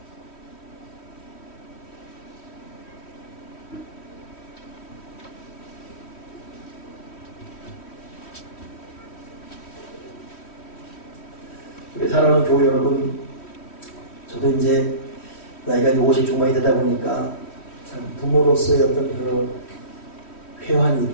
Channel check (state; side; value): late; right; 3.1 ms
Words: 우리 사랑하는 교회 여러분, 저도 이제 나이가 50 중반이 되다 보니까 참 부모로서의 어떤 그런 회환이